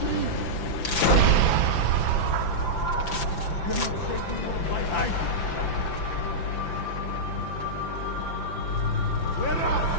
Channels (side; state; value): right; late; 5.9 ms